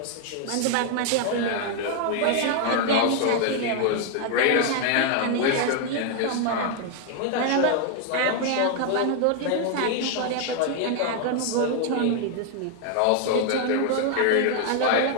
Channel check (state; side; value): different; both; correlation 0.00